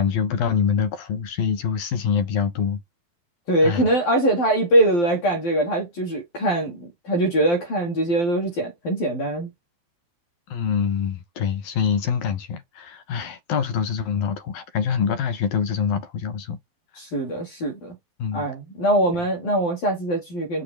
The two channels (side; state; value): right; late; 12 ms